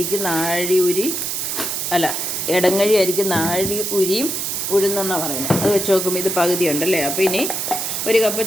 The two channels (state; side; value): noise; right; hiss, 2 dB below the sound